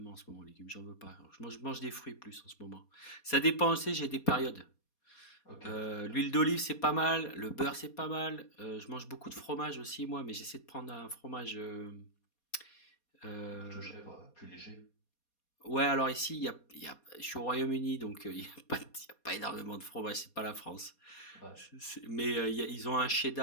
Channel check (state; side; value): late; right; 4.2 ms